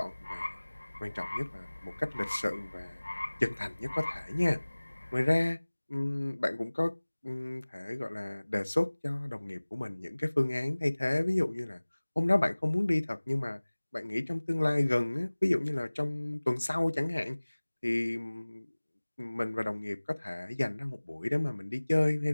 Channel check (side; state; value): both; inverted; correlation -1.00